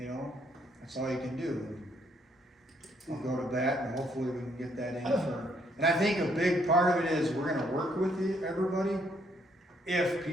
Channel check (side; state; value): both; normal; correlation 0.70